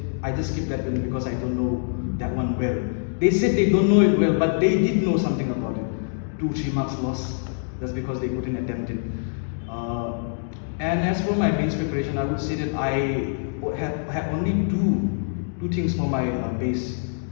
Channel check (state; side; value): silent; right; digital silence